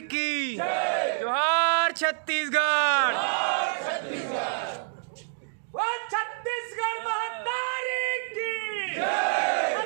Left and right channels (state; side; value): silent; left; digital silence